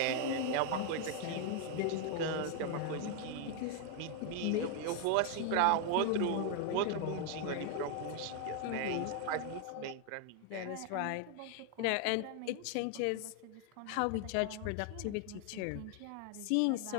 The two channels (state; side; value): different; both; correlation 0.00